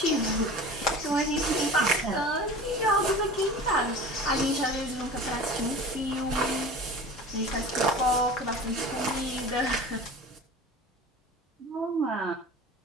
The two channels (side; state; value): both; normal; correlation 0.38